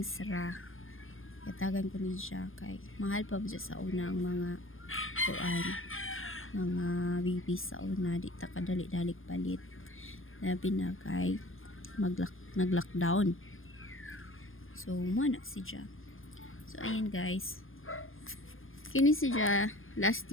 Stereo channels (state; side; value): late; right; 0.59 ms